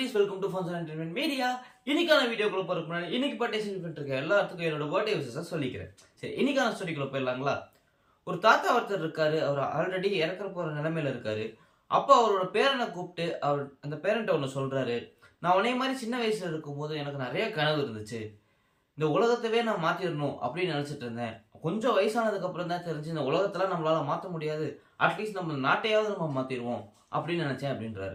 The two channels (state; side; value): identical; both; correlation 1.00